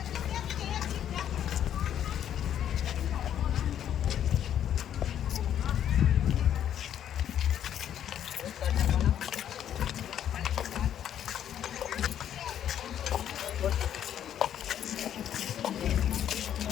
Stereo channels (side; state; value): right; quieter; 10.1 dB